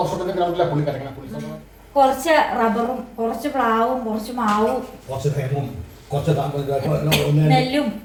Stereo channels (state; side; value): identical; both; correlation 1.00